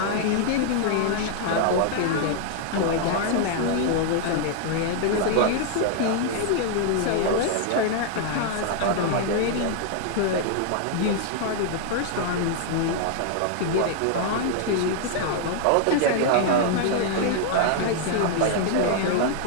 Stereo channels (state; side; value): different; both; correlation 0.00